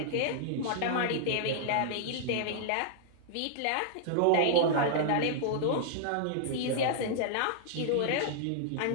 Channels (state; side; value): different; both; correlation -0.01